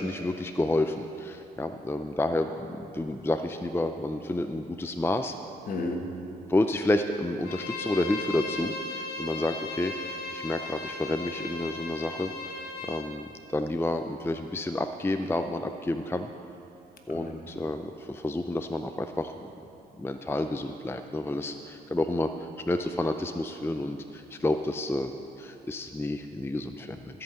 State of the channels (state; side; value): normal; both; correlation 0.81